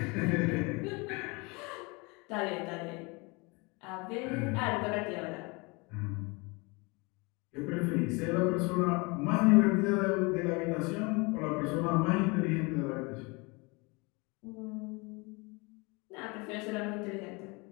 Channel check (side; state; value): right; quieter; 27.8 dB